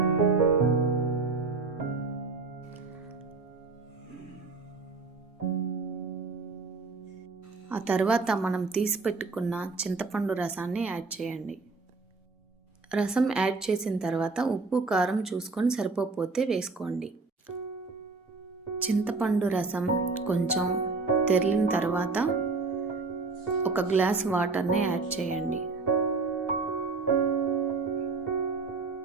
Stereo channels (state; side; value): quieter; left; 4.0 dB